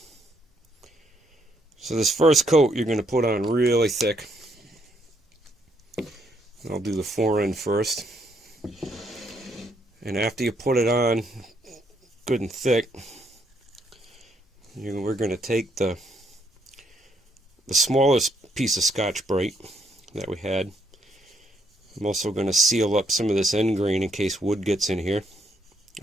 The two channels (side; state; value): both; normal; correlation 0.73